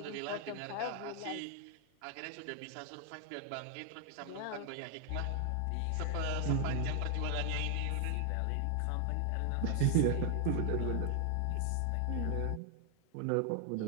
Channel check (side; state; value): both; different; correlation 0.00